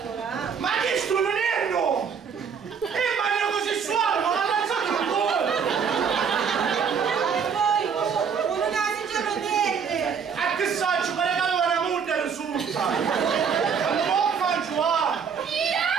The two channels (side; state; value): left; quieter; 6.6 dB